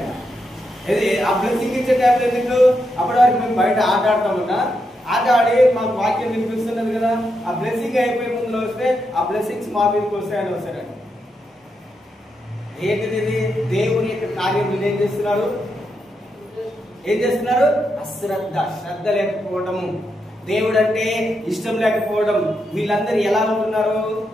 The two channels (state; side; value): normal; both; correlation 0.83